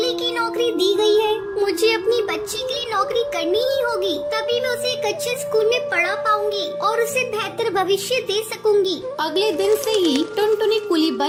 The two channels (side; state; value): both; identical; correlation 1.00